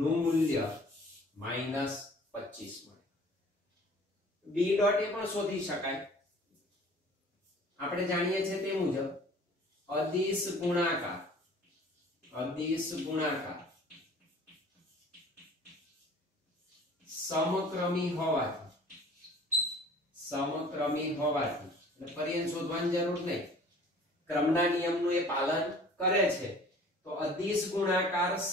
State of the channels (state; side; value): normal; both; correlation 0.49